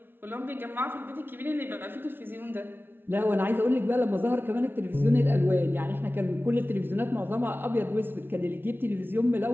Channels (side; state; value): left; late; 0.10 ms